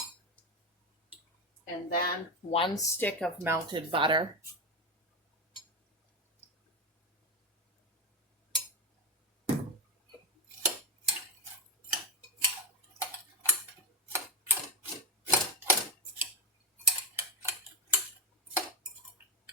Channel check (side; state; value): both; normal; correlation 0.10